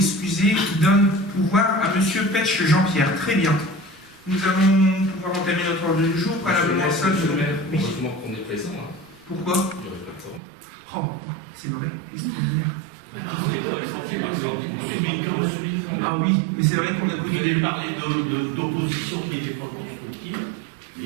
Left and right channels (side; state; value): left; drops out; at 10.4 s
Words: donne pouvoir à Monsieur Petch Jean-Pierre. Très bien. Nous allons pouvoir entamer notre ordre du jour. Préalablement seul. Heureusement qu'on est présent. Hein. Pourquoi? Oh, c'est vrai, extraordinaire. Ah oui, mais c'est vrai qu'on a connu des parlé d'opposition qui n'était pas constructive,